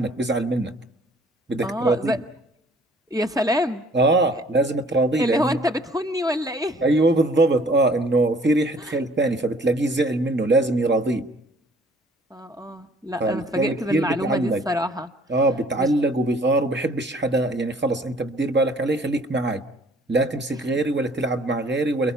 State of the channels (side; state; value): both; normal; correlation 0.56